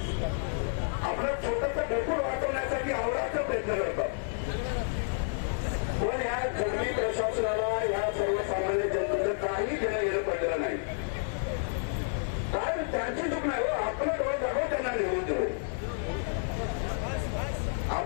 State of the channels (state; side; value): silent; right; 58 dB below the other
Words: आपलं छोटंसं ढोकूळ वाचवण्यासाठी आवडाचा प्रयत्न करतात. पण या जंगली प्रशासनाला या सर्वसामान्य जनतेचं काही देणं घेणं पडलेलं नाही. कारण त्यांची चूक नाही हो, आपलं डोळे जागो त्यांना निवडून देऊ.